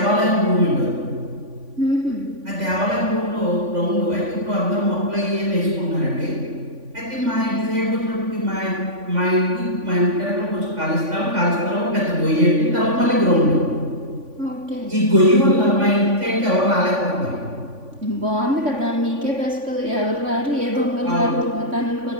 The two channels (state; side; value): late; left; 3.5 ms